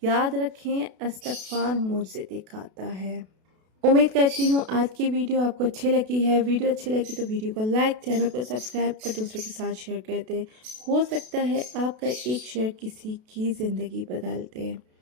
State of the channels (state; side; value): late; left; 32 ms